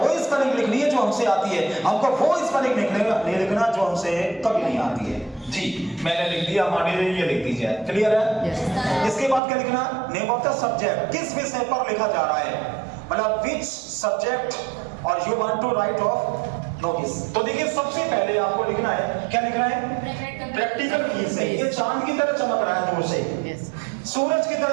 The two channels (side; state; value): left; drops out; at 9.4 s